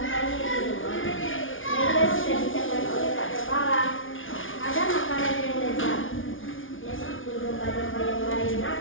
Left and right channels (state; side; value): late; right; 0.57 ms